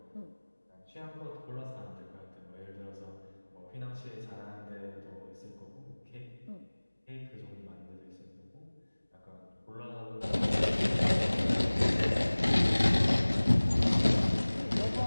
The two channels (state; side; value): inverted; both; correlation -1.00